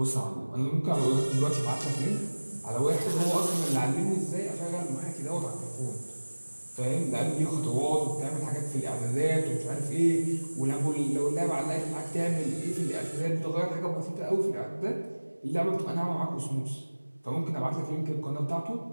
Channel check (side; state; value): both; inverted; correlation -1.00